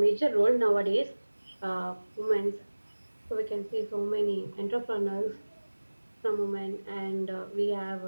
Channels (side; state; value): both; inverted; correlation -1.00